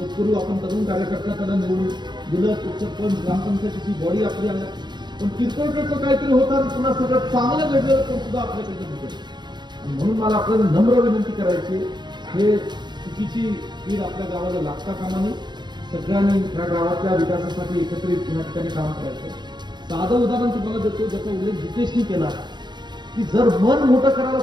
आपण तरुण कार्यकर्ता त्यांना निवडून दिलं सरपंच ग्रामपंचायतीची बॉडी आपली आल्या पण किरकोळ काहीतरी होतं पुन्हा सगळं चांगलं घडलं पण सुद्धा आपल्याकडे भेटेल. म्हणून मला आपल्याला नम्र विनंती करायची हे चुकीची कीड आपल्या गावाला लागता कामा नये. सगळ्यांनी या गावातल्या विकासासाठी एकत्रित या ठिकाणी काम करायचं. साधं उदाहरण तुम्हाला देतो, ज्याचा उल्लेख जितेशनी केला की जर मन मोठं करायला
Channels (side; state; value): left; late; 0.21 ms